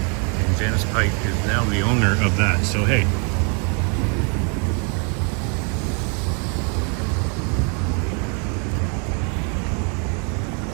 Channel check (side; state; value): left; quieter; 38.0 dB